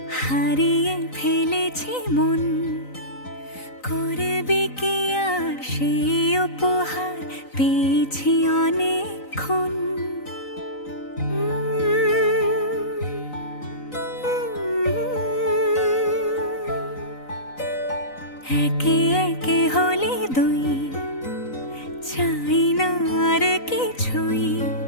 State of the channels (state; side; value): late; right; 3.9 ms